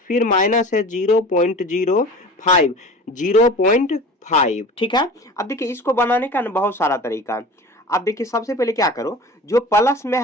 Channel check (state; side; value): normal; both; correlation 0.38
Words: फिर माइनस है 0.05, 0.5। ठीक है। अब देखिए इसको बनाने का ना बहुत सारा तरीका है। अब देखिए सबसे पहले क्या करो, जो प्लस में